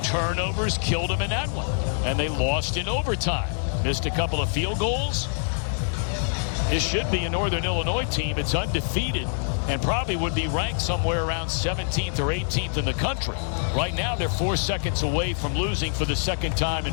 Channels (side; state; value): right; silent; digital silence